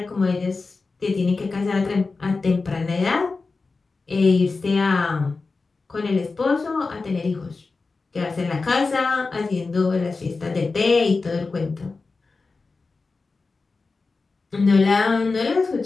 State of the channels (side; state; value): right; quieter; 4.0 dB